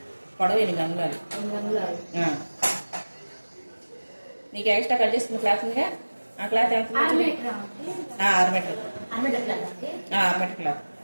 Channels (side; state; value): both; inverted; correlation -1.00